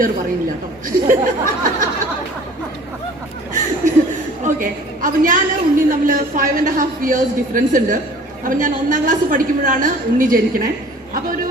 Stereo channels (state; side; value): normal; both; correlation 0.48